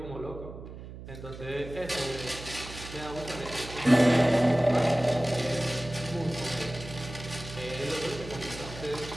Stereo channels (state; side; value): noise; right; hum, 13 dB below the sound